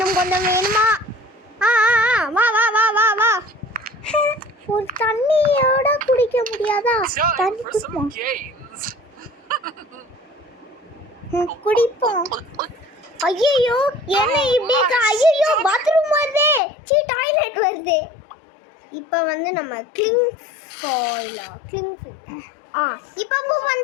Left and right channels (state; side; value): drops out; right; at 16.6 s